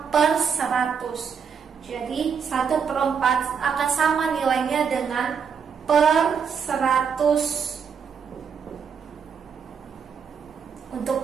per 100. Jadi 1/4 akan sama nilainya dengan per 100 untuk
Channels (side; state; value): left; quieter; 6.6 dB